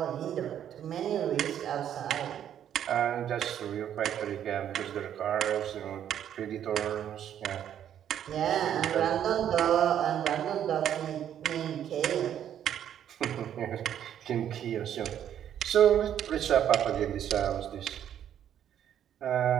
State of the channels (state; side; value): quieter; left; 10.0 dB